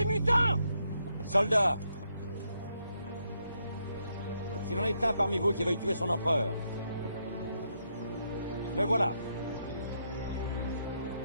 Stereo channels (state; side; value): inverted; both; correlation -0.78